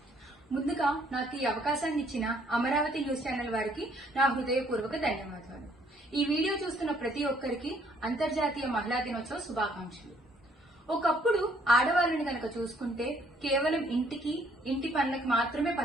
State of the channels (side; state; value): both; normal; correlation 0.65